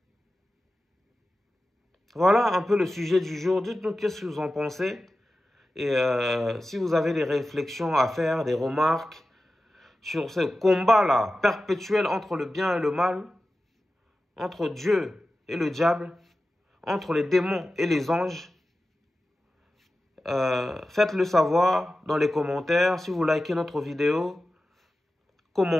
Voilà un peu le sujet du jour. Dites-nous qu'est-ce que vous en pensez. Et si vous avez des réflexions à faire, des remarques sur ce combat-là perpétuel entre le bien et le mal, entre Dieu et le diable, entre les démons et les anges, faites-le savoir dans les commentaires. Si vous likez notre vidéo,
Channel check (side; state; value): both; normal; correlation 0.94